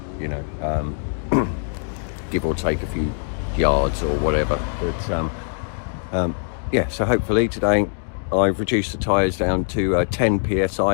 you know, give or take a few yards or whatever, but yeah, so hopefully today I've reduced the tyres down to 10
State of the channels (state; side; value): silent; right; digital silence